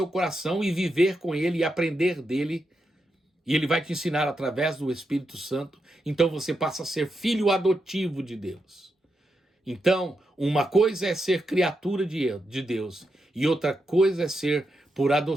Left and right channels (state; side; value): normal; both; correlation 0.85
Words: coração, e viver com ele, e aprender dele, e ele vai te ensinar através do Espírito Santo. Então você passa a ser filho adotivo de Deus. Então, uma coisa é ser criatura de Deus, e outra coisa é ser, por